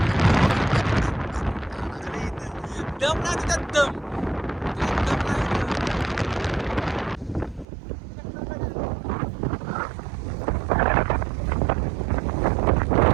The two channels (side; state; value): left; drops out; at 7.7 s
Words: दम ना तिथं दम.